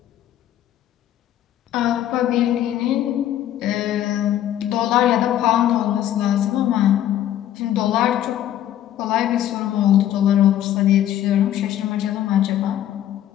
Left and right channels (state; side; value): quieter; right; 11.8 dB